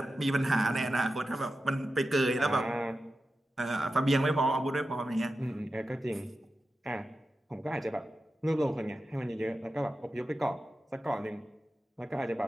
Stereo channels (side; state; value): both; normal; correlation 0.91